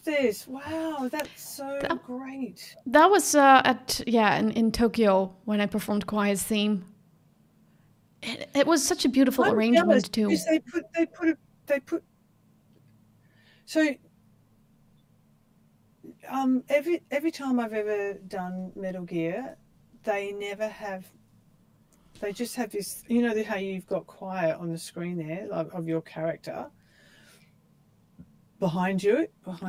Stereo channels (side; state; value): both; identical; correlation 1.00